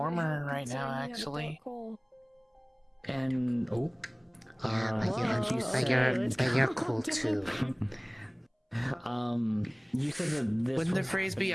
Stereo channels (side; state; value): both; identical; correlation 1.00